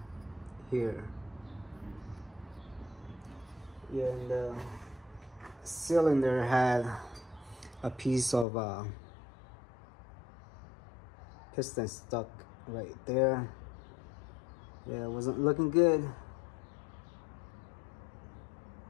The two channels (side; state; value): right; drops out; at 8.5 s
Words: here. Yeah, and the cylinder had a piece of piston stuck right there. Yeah, it wasn't looking good.